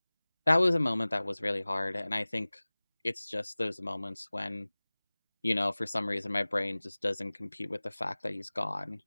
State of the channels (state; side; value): inverted; both; correlation -1.00